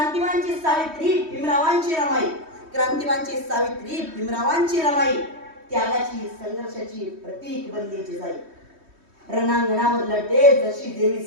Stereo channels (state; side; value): late; left; 3.2 ms